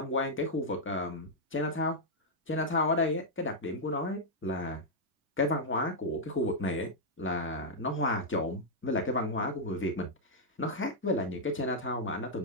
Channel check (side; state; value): both; normal; correlation -0.05